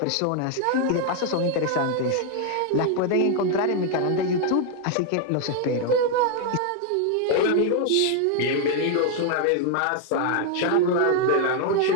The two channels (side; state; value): both; different; correlation 0.00